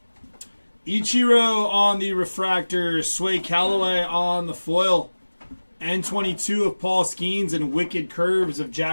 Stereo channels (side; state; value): both; inverted; correlation -1.00